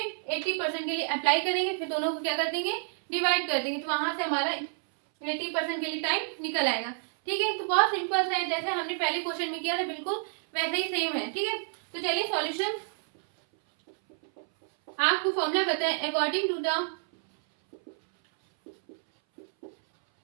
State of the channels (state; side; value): silent; left; 58 dB below the other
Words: 80% के लिए अप्लाई करेंगे, फिर दोनों को क्या कर देंगे, डिवाइड कर देंगे। तो वहां से हमारा 80% के लिए टाइम निकल आएगा। ठीक है, तो बहुत सिंपल है, जैसे हमने पहले क्वेश्चन में किया था बिल्कुल वैसे ही सेम है। ठीक है, तो चलिए सॉल्यूशन, आपको फॉर्मूला बताएं अकॉर्डिंग टू द